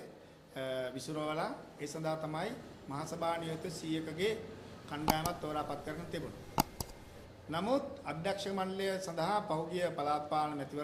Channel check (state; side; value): identical; both; correlation 1.00